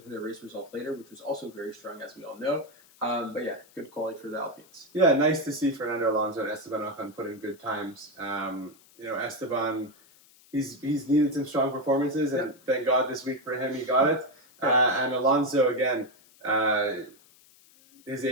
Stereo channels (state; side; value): noise; left; hiss, 27 dB below the sound